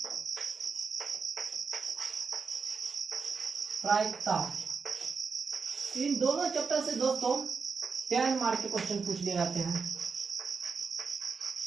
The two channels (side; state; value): left; quieter; 5.2 dB